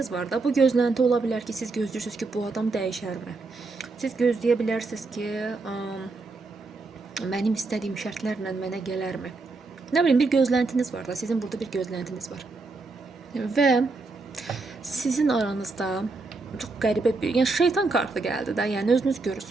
var da, bu gözlənti ola bilər ki, siz gözləyirsiniz ki, bu adam dəyişərmi? Siz gözləyə bilərsiniz ki, mənim istədiyim şərtlərlə mənə gələrmi? Nə bilim, bir gözləntiniz var da, sizin burada bir gözləntiniz var. Və sizin aranızda çox qəribə bir, yəni şeytan kartı gəldi də, yəni özünüz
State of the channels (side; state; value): left; quieter; 3.7 dB